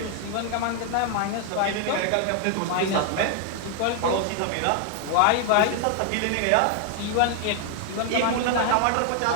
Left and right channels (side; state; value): both; different; correlation 0.00